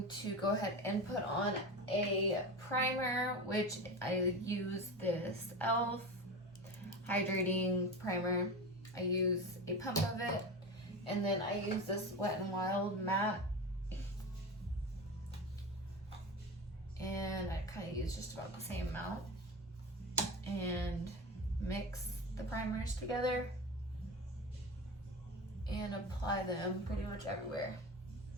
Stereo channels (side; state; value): both; normal; correlation 0.26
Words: to go ahead and put on a primer, which I use this e.l.f. hydrating primer. I use a pump of it, and then I use this Wet n Wild matte, and I kind of use just about the same amount and mix the primers together and apply them pretty much everywhere.